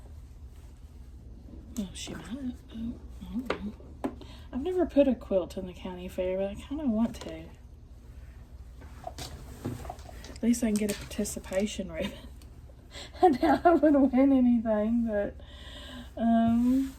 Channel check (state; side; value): identical; both; correlation 1.00